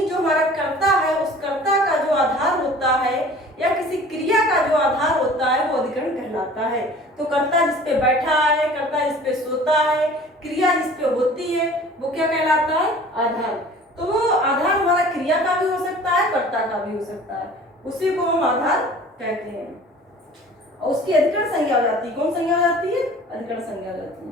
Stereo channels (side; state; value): both; normal; correlation 0.46